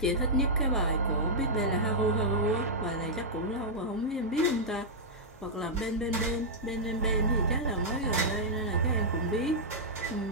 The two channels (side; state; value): both; normal; correlation -0.08